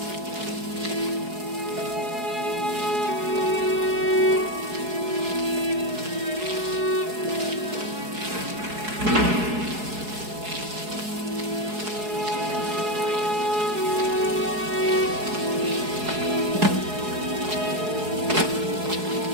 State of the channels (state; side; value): late; left; 4.7 ms